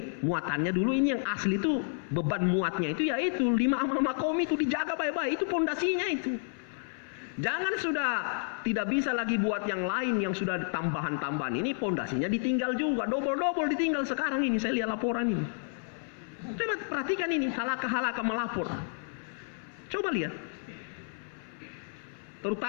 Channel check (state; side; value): silent; right; 57 dB below the other